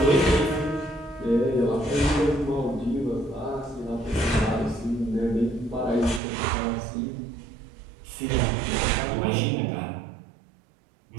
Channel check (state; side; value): drops out; left; at 6.2 s